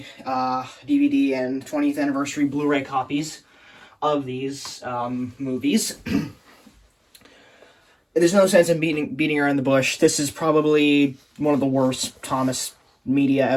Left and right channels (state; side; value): identical; both; correlation 1.00